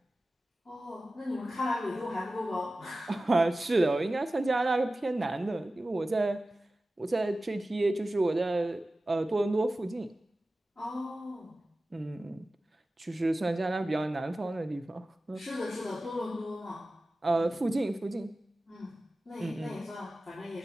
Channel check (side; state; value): both; normal; correlation 0.95